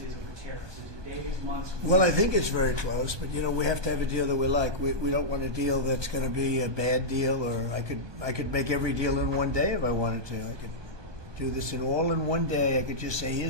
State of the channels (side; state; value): left; late; 1.2 ms